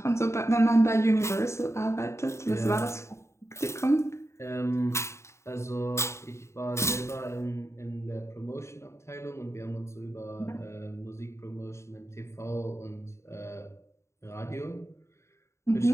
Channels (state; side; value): late; right; 0.14 ms